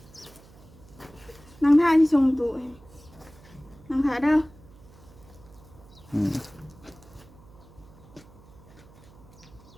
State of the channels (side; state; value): right; noise; hum, 23 dB below the sound